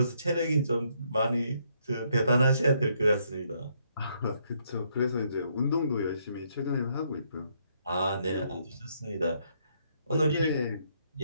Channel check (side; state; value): both; inverted; correlation -0.73